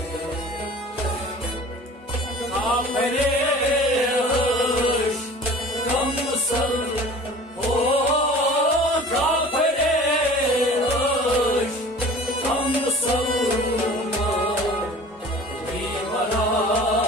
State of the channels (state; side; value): normal; both; correlation 0.43